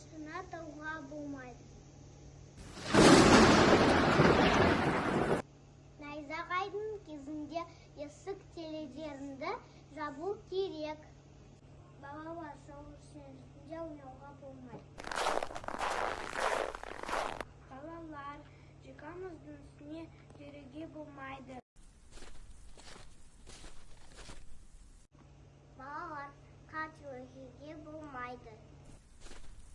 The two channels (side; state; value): both; identical; correlation 1.00